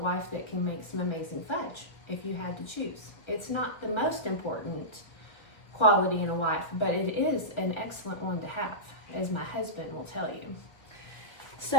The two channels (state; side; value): late; right; 1.5 ms